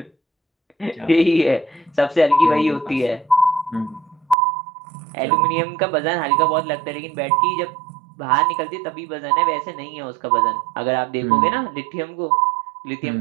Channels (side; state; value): left; drops out; at 4.4 s